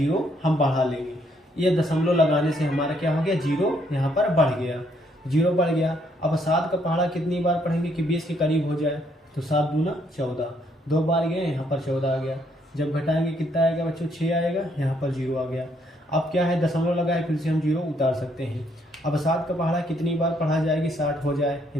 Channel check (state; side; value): normal; both; correlation 0.71